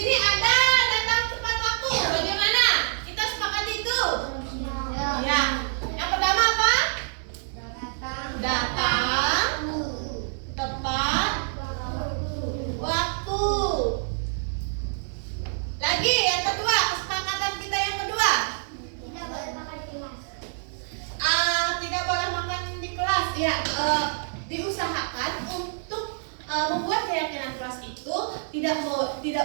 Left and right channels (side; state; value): left; silent; digital silence